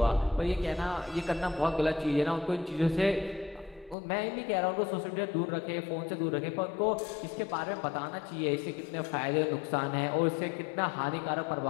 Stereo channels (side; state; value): right; drops out; at 4.0 s